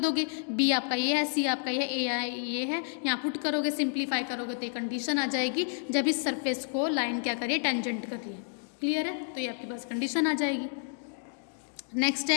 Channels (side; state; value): right; silent; 58 dB below the other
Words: b आपका ये है, c आपका ये है, a ये है, यहाँ पुट करोगे, सिंप्लीफाई करोगे तो ये कंडीशन आ जाएगी जब इस सरफेस को लाइन क्या करिए, टेंजेंट करिए। क्लियर है, तो ये आपके पास कंडीशन आ जाएगी। नेक्स्ट